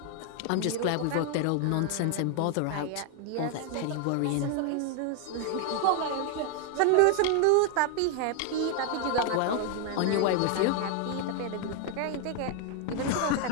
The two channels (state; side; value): different; both; correlation 0.00